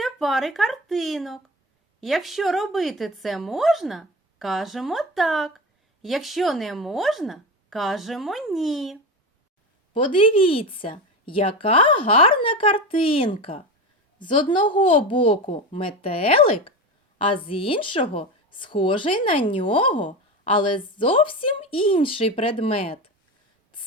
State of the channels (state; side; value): normal; both; correlation 0.23